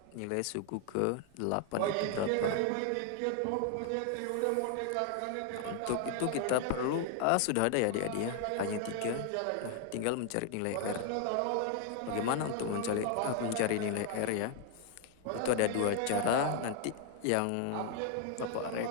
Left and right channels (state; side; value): different; both; correlation 0.00